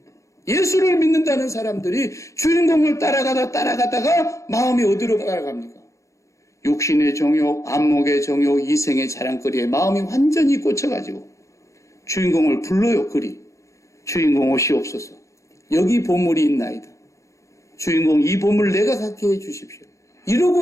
예수를 믿는다는 사람들이 주인공을 따라가다가 마음이 어디로 따라갑니까? 육신의 정욕, 안목의 정욕, 이생의 자랑거리에 마음이 완전히 꽂혀가지고 주인공을 불러요. 그리 주인공 오시옵소서. 여기 보물이 있나이다. 주인공 이 보물 내가 갖게 해주십시오.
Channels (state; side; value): late; right; 0.15 ms